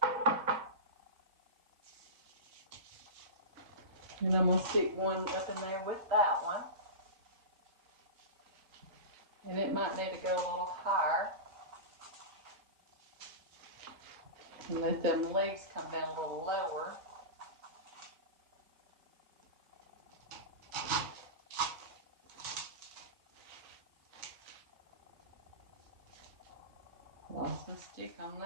And I'm going to stick one up in there with that one. And it might need to go a little higher. And let them leaves come down a little lower. Lost the stick on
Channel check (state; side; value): late; left; 4.4 ms